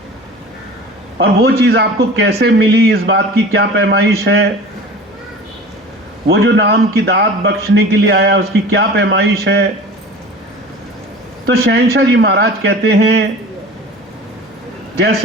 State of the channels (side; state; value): both; normal; correlation 0.39